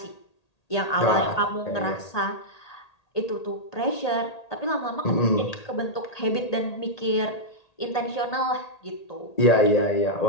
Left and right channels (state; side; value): late; right; 1.8 ms